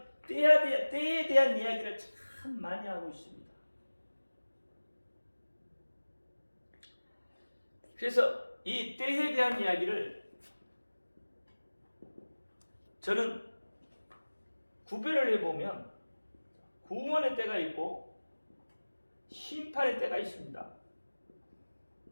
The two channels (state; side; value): inverted; both; correlation -1.00